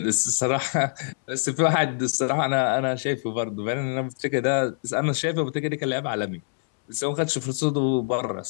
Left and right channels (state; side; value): silent; right; 62 dB below the other